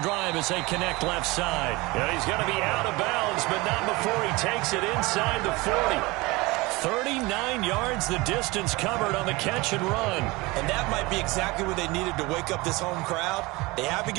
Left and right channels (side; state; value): left; quieter; 23.0 dB